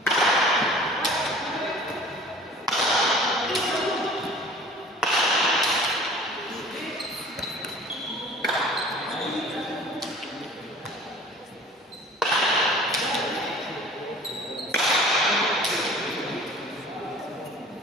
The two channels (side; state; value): both; normal; correlation 0.46